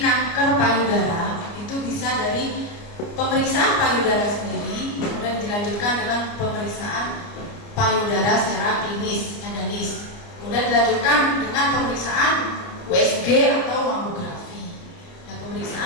payudara itu bisa dari pemeriksaan payudara sendiri, kemudian dilanjutkan dengan pemeriksaan payudara secara klinis, endonis, kemudian dilanjutkan dengan pemeriksaan USG atau mamografi. Nah,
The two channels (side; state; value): right; late; 29 ms